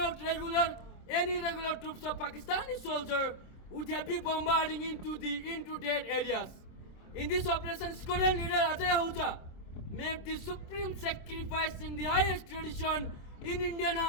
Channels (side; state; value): right; late; 26 ms